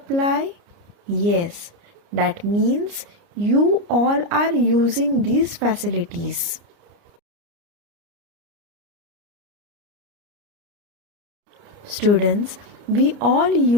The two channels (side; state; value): left; late; 29 ms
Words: Yes, that means you all are using these facilities. Students, we all